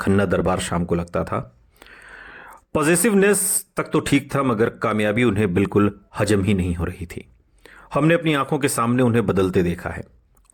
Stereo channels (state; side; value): identical; both; correlation 1.00